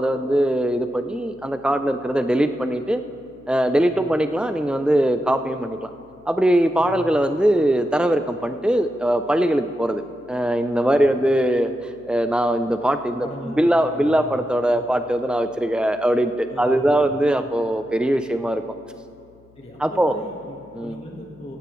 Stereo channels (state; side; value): noise; left; hum, 30 dB below the sound